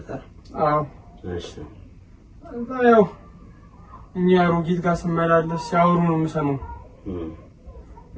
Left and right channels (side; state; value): both; identical; correlation 1.00